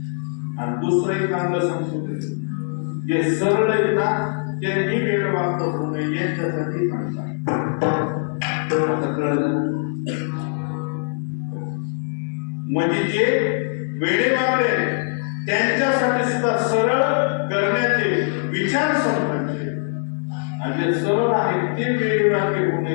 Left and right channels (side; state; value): right; silent; 61 dB below the other